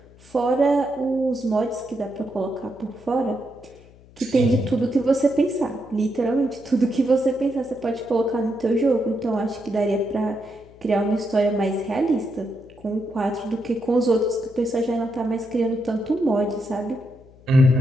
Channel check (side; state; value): left; noise; hum, 24 dB below the sound